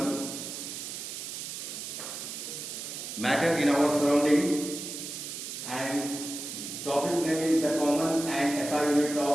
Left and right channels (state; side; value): noise; right; hiss, 7 dB below the sound